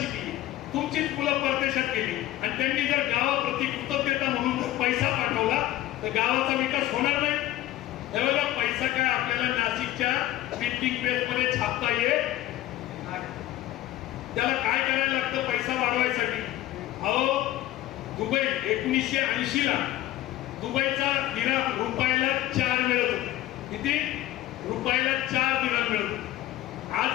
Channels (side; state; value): right; quieter; 14.8 dB